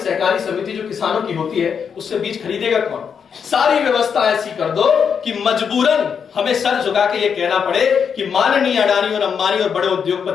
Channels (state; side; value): quieter; right; 6.9 dB